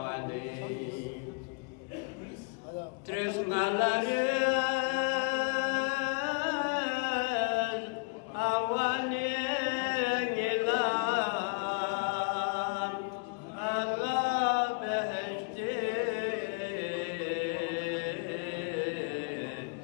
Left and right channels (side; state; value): right; quieter; 34.2 dB